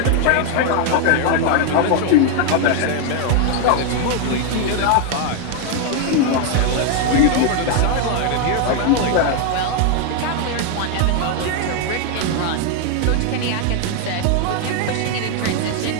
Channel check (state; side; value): different; both; correlation 0.00